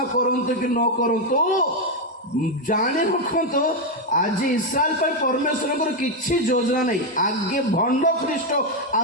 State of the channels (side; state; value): both; normal; correlation 0.04